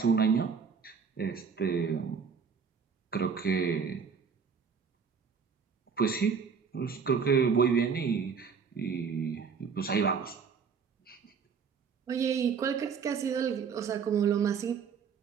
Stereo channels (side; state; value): left; quieter; 6.1 dB